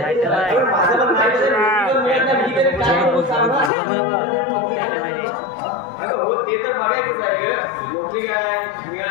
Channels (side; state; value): right; drops out; at 3.7 s